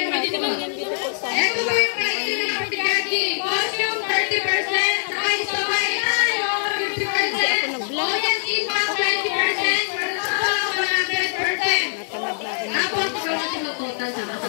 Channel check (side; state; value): right; silent; 64 dB below the other